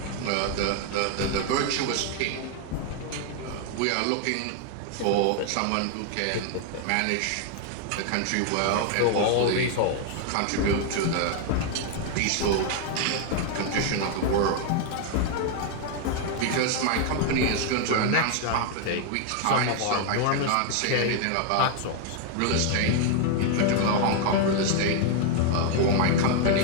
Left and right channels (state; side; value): different; both; correlation 0.00